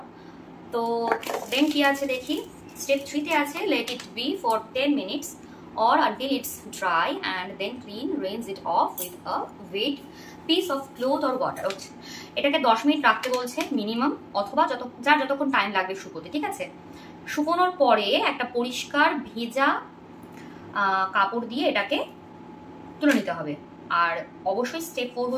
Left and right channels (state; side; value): identical; both; correlation 1.00